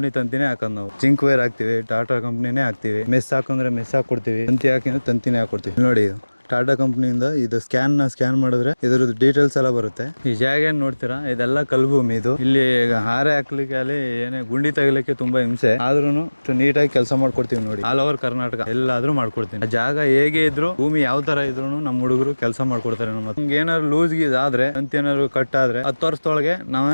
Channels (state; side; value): inverted; both; correlation -1.00